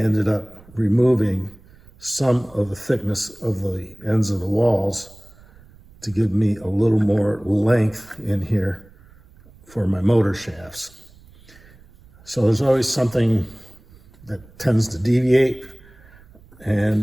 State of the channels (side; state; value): right; noise; rumble, 25 dB below the sound